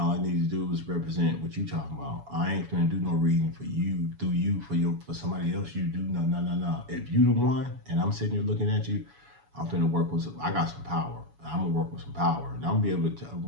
I need to do is represent what you talking about. I ain't finna do no reading for you, through you, for somebody else. You do no. If you the one, and I'm sitting here looking at you, I'm finna work with I got some power. I'm gonna work with some power, and we're gonna be able to talk.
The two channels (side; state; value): left; late; 7.1 ms